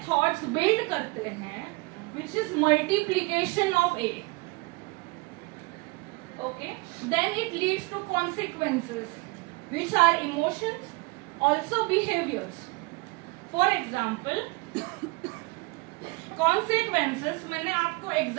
thoughts build करते हैं which is multiplication of A. Okay, then it leads to consequences which are emotions, also behaviours. For example consequences मैंने आपको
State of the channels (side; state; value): left; quieter; 26.2 dB